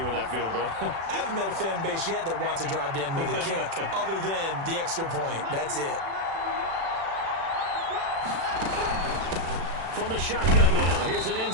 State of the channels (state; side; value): late; left; 36 ms